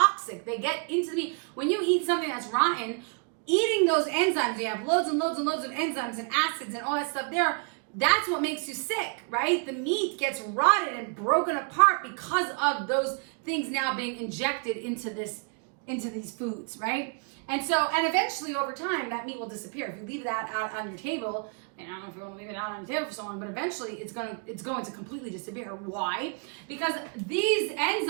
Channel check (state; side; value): quieter; left; 35.9 dB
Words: They get into the meat. When you eat something that's rotten, eating those enzymes, you have loads and loads and loads of enzymes and acids and all that stuff there, that's what makes you sick, right? The meat gets rotted and broken apart because of those things now being injected into these foods, right? And eventually over time, that meat will disappear. If you leave that out on your table, and I don't know if you want to leave it out on the table for so long, but eventually it's going to completely disappear. Why? Because these